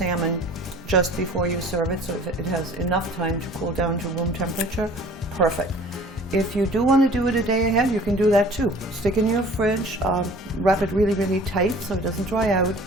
just before you serve it, so if it has enough time to cool down to room temperature, perfect. If you do want to do it a day ahead, you can do that too. Stick in your fridge, wrap it really, really tight so it doesn't dry out.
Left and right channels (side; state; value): both; normal; correlation 0.48